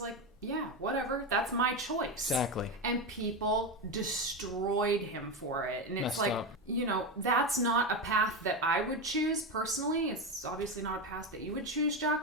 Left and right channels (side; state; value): both; normal; correlation 0.15